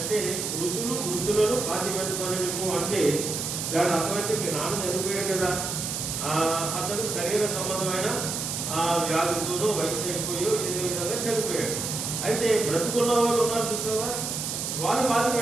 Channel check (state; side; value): noise; right; hiss, 3 dB below the sound